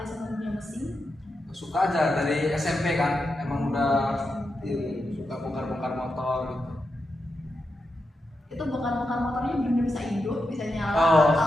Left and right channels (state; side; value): normal; both; correlation 0.87